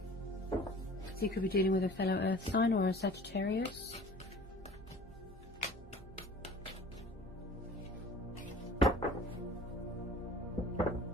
So you could be dealing with a fellow Earth sign or a Sagittarius.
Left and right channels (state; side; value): normal; both; correlation 0.45